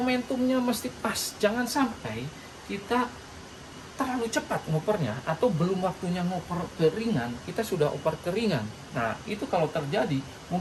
mesti pas. Jangan sampai kita terlalu cepat ngopernya atau belum waktunya ngoper ke ringan, kita sudah oper ke ringan. Nah, itu kalau terjadi,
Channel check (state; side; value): identical; both; correlation 1.00